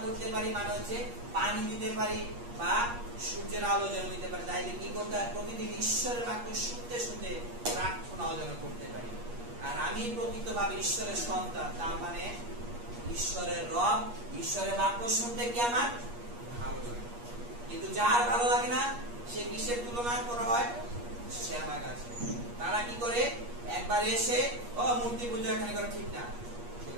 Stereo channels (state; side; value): late; left; 8.4 ms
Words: করতে পারি, মানে হচ্ছে পানি দিতে পারি বা সূর্যের আলো যেন দিতে পারি। তাইলে কি করতে হয়, প্রতিদিন ঈশ্বরের বাক্য শুনতে শুনতে প্রার্থনাও যেন করতে পারি। আর আমি প্রকৃতভাবে ঈশ্বরের সন্তান, তার মানে ঈশ্বরের রব, ঈশ্বরের বাক্য শুনতে কি আমার ভালো লাগে। কিন্তু যার ভালো লাগে না সে কিসের তুলনা করা হয়, শ্যামা গাছে। তারা কি করে, একবার এসে ও মূর্তি পূজা এখানে করা ঠিক না,